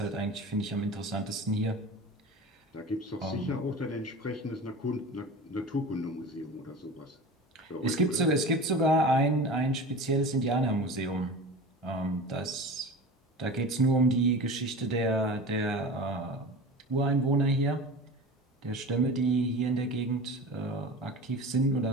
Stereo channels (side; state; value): both; normal; correlation 0.34